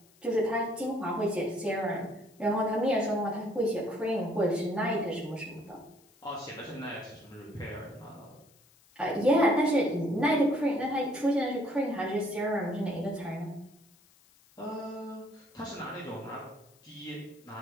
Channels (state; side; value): noise; left; hiss, 30 dB below the sound